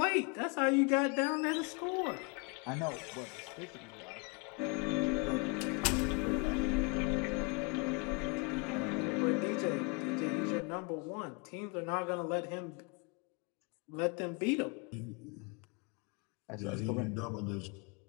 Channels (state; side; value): quieter; right; 32.2 dB